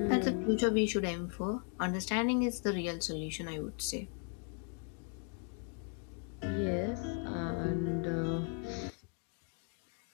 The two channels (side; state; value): right; quieter; 38.3 dB